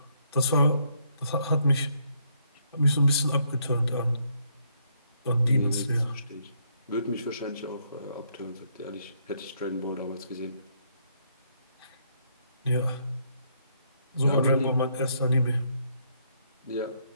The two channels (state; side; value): inverted; both; correlation -0.72